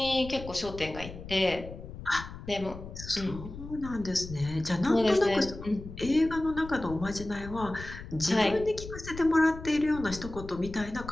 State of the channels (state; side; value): noise; left; rumble, 12 dB below the sound